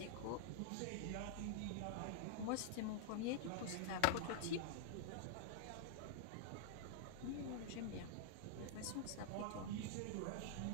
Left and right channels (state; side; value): different; both; correlation -0.01